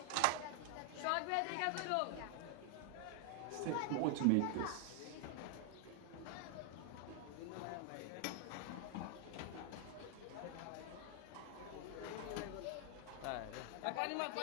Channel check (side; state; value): both; different; correlation 0.00